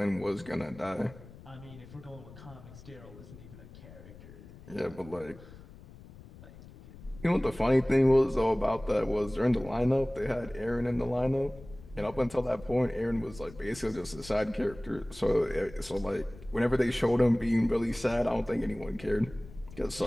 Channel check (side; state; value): left; noise; rumble, 18 dB below the sound